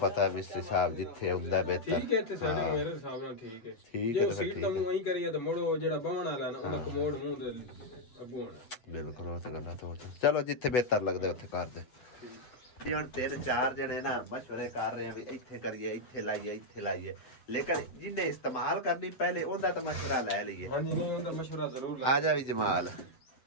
ਮਿਸਤਰੀ ਸਾਹਿਬ ਜਿੱਥੇ ਹੁੰਦਾ ਬਿਹਤਰ। ਠੀਕ ਹੈ, ਇੱਥੇ ਸੈਟਿੰਗ ਮੇਰੇ ਹਿਸਾਬ ਨਾਲ ਠੀਕ ਹੈ। ਠੀਕ ਜੇ ਹੈ ਉਹ ਸੀਟ ਤਾਂ ਮੂੰਹ ਐਂ ਕਰੀਏ ਤਾਂ ਮੁੜੋ ਜਿਹੜਾ ਬਵਣ ਵਾਲਾ ਨਾ ਉਹਦਾ ਕਮੋਡ ਮੂੰਹ ਦੇ ਅੱਗੋਂ ਹੋਣਾ। ਬਿਲਕੁਲ ਉਹ ਤਾਂ ਗੱਲਾਂ ਤਾਂ ਚਲੋ ਜਿੱਥੇ ਬਿਹਤਰ ਲੱਗਦਾ ਉੱਥੇ ਕਰਦੇ। ਹੁਣ 3-4 ਜਣੇ ਨਾ ਮਸ਼ਵਰੇ ਕਰ ਰਹੇ ਆ ਵੀ ਇੱਥੇ ਕਰੀਏ, ਇੱਥੇ ਲਾਈਏ ਲੇਕਿਨ ਜਿਹਨੇ ਇਸਤੇਮਾਲ ਕਰਨੀ ਪਹਿਲੇ ਉਹਦਾ ਤਾਂ ਮਸ਼ਵਰਾ ਲੈ ਲਈਏ। ਹਾਂਜੀ ਨਹੀਂ ਉਹਦਾ ਮਸ਼ਵਰਾ ਜ਼ਰੂਰ ਲੈ। ਆ ਜਾ ਵੀ ਜਮਾਲ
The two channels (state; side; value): late; right; 7.9 ms